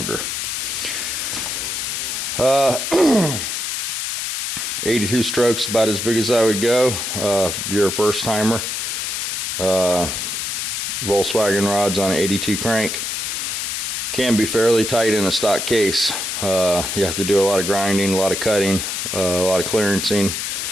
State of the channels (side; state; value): left; noise; hiss, 2 dB below the sound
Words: 82 strokes, about as big as I would go if you're a first timer. Volkswagen rods on an 82 crank can be fairly tight in a stock case. You have to do a lot of grinding, a lot of cutting, a lot of clearancing.